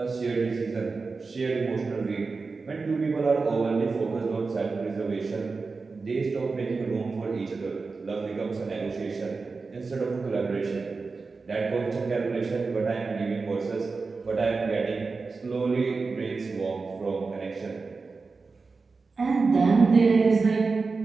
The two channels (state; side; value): quieter; left; 4.3 dB